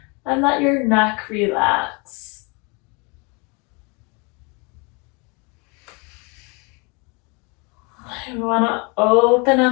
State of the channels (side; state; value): right; quieter; 30.8 dB